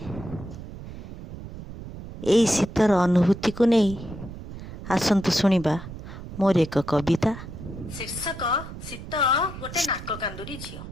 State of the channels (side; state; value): right; noise; rumble, 12 dB below the sound